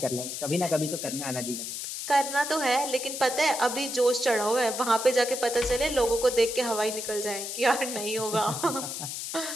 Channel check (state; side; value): noise; left; hiss, 6 dB below the sound